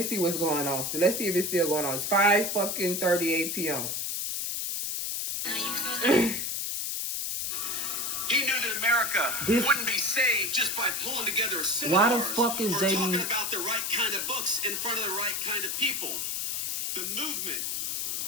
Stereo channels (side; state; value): left; noise; hiss, 1 dB below the sound